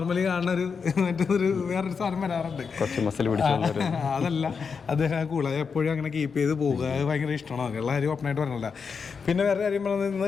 കാണുന്ന മറ്റൊരു വേറൊരു സാധനം വരാറുണ്ട്, അതല്ല അദ്ദേഹം കൂളായി എപ്പോഴും അങ്ങനെ കീപ്പ് ചെയ്ത് പോകുക. അത് ഭയങ്കര ഇഷ്ടമാണ്. എല്ലാ കാര്യം ഓപ്പണായിട്ട് പറഞ്ഞില്ല. പിന്നെ വേറെ കാര്യം പറഞ്ഞത്, ഇന്ന്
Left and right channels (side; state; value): right; quieter; 5.7 dB